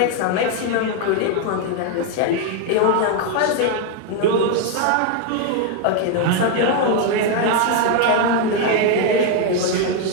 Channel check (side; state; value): both; different; correlation 0.01